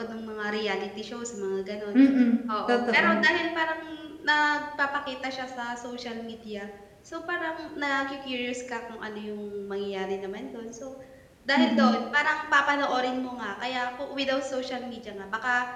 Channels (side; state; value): both; identical; correlation 1.00